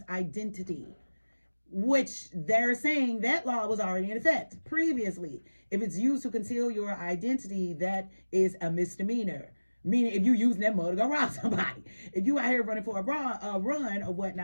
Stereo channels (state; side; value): inverted; both; correlation -1.00